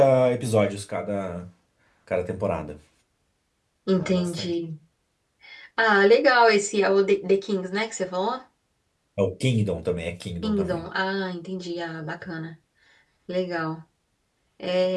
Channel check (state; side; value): identical; both; correlation 1.00